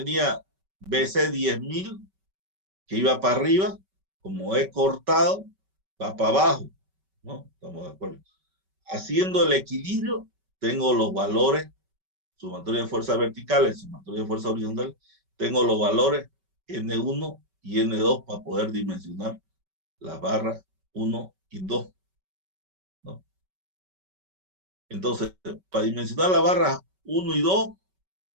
BC 10.000 que iba para arriba. Como he cortado, va para abajo, ¿no? Estamos de acuerdo. Haciendo el equilibrio, tengo los valores, sumatoria de fuerzas verticales, sumatoria de fuerzas horizontales, tengo los valores N1 y N2 para poder dimensionar las barras 1 y 2, ¿no? Entonces, para dimensionar las barras 1 y 2,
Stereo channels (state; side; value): late; left; 5.2 ms